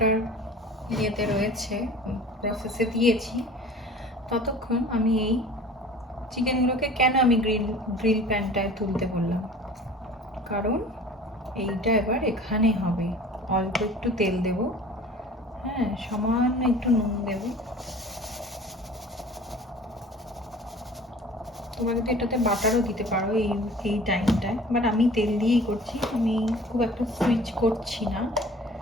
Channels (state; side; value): normal; both; correlation 0.45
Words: ইয়েতে রয়েছে, প্রসেসে দিয়েছি, ততক্ষণ আমি এই চিকেনগুলোকে কেন আমি গ্রিল প্যানটায় তুলতে বললাম, কারণ এইটা এবার এখানে হবে। অল্প একটু তেল দেব, হ্যাঁ, সামান্য একটু নুন দেব। তোমরা কিন্তু এটাতে বাটারও দিতে পারো এই টাইমটায়, বাট আমি তেল দিয়েই করছি, আমি খুব একটা সুইচ করছি না।